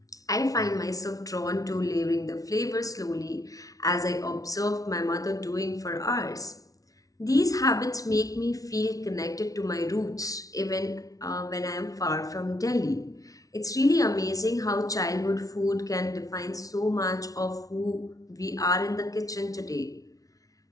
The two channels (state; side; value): late; right; 0.18 ms